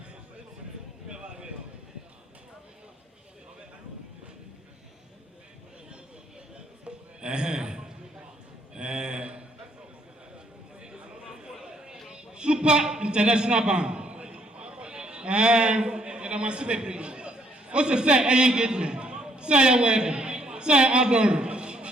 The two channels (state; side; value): normal; both; correlation 0.67